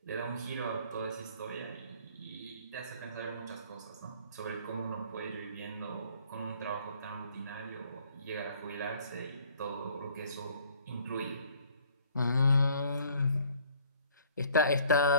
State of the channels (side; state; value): both; inverted; correlation -0.58